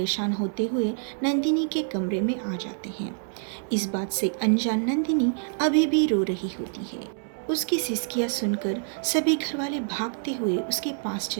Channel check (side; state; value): left; silent; 60 dB below the other